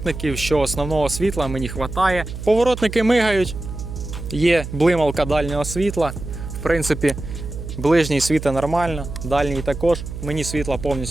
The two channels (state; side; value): noise; right; hum, 9 dB below the sound